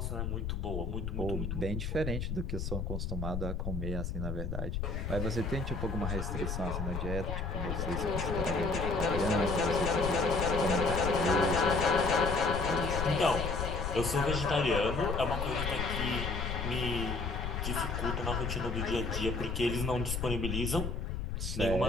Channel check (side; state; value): left; noise; rumble, 3 dB below the sound